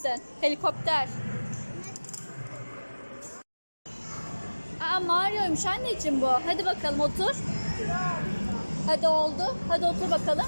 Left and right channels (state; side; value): inverted; both; correlation -1.00